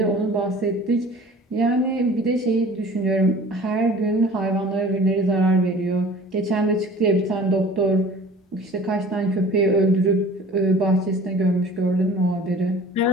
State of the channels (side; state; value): both; normal; correlation 0.45